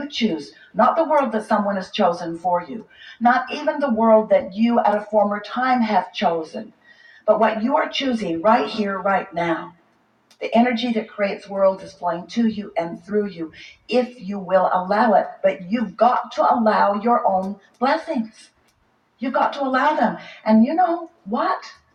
choose, not the world that someone has chosen for you, not even the world that you at a former time have chosen, but what you are choosing right here, right now. The energy that creates worlds is flowing to you and through you, if you will allow it. But you've got to allow your own blessings. You've got to allow them. And you know what?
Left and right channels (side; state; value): both; identical; correlation 1.00